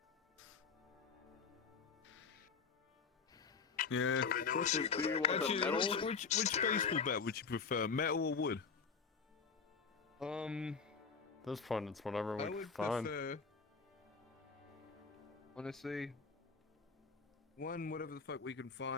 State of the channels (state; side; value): quieter; right; 5.5 dB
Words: Yeah. Actually, do you want a Actually, metal? which baseball bat would you prefer, metal or wood? This point, it's whatever we I can would find. prefer, honestly, one whatever the fuck we can